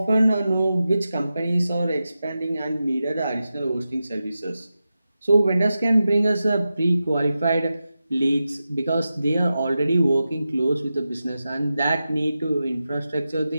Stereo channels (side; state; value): both; inverted; correlation -0.91